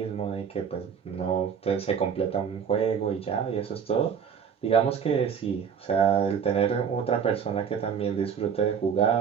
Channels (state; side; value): quieter; left; 7.2 dB